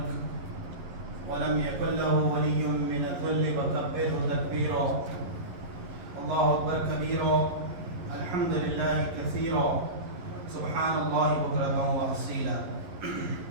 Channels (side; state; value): left; late; 11 ms